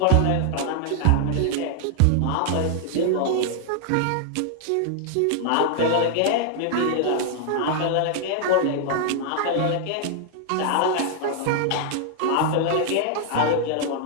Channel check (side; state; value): both; different; correlation 0.00